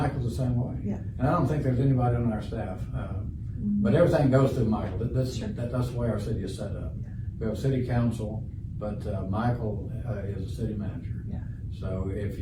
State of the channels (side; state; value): both; identical; correlation 1.00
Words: the same way. And I don't think there's anybody on our staff. But everything goes through Michael. That's the way our city is set up. We have a city council, but Michael is a city manager. So if